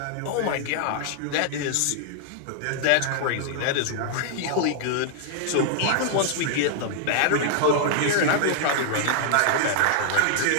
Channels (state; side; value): different; both; correlation -0.01